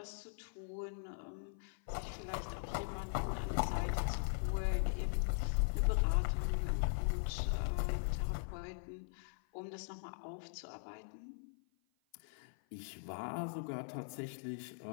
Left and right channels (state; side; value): silent; right; 51 dB below the other